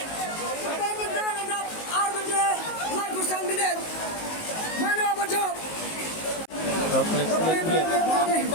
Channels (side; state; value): right; late; 19 ms